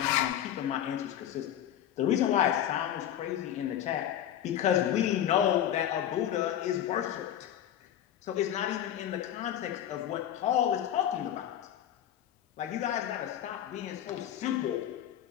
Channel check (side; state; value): right; quieter; 10.9 dB